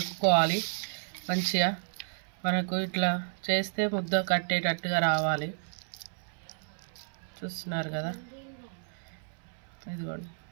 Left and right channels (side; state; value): left; silent; 57 dB below the other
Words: మంచిగా. మనకు ఇట్లా చేస్తే ముద్ద కట్టేటట్టుగా రావాలి. చూస్తున్నారు కదా, ఇదిగోండి